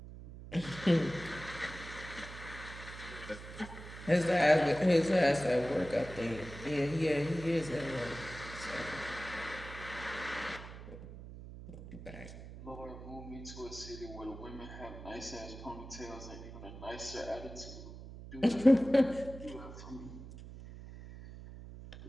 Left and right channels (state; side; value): noise; right; hum, 13 dB below the sound